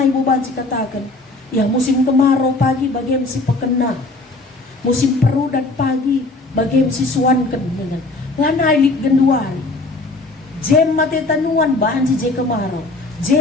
ibu baci katakan, ya musim kemarau pagi bagi si pekena. Musim perudat pagi bagi si suanken dengan lanai lik genduari. Jem mate tanuan banci je kemarau.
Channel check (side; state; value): right; quieter; 3.1 dB